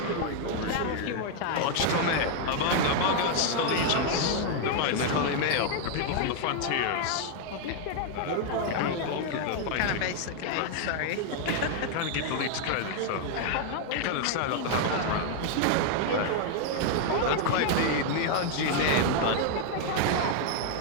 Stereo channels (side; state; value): both; different; correlation 0.00